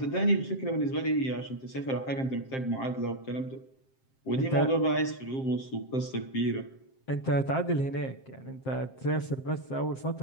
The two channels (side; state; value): right; late; 7.6 ms